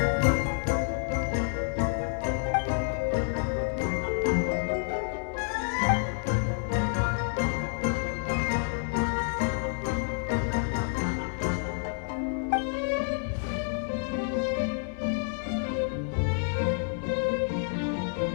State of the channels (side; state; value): right; silent; 59 dB below the other